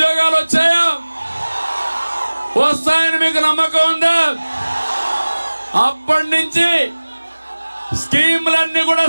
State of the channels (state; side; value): inverted; both; correlation -1.00